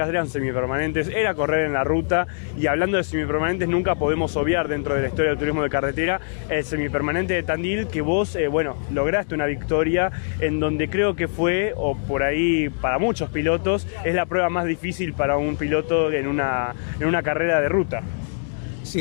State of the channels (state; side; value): silent; right; digital silence